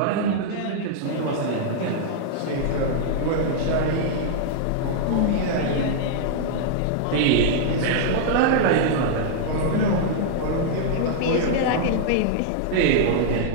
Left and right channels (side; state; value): both; different; correlation -0.01